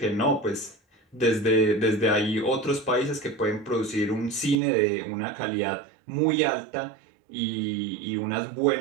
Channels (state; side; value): drops out; left; at 4.6 s